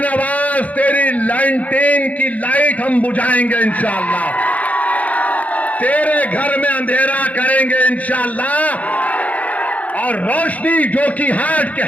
तेरी लैंटेन की लाइट हम बुझाएंगे इंशाअल्लाह, तेरे घर में अंधेरा करेंगे इंशाअल्लाह, और रोशनी जोकीहाट के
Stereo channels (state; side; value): late; right; 0.071 ms